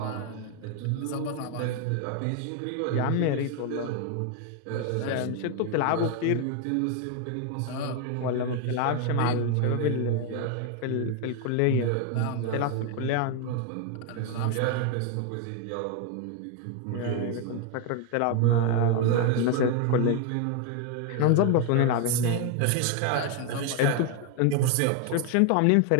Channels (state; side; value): different; both; correlation 0.01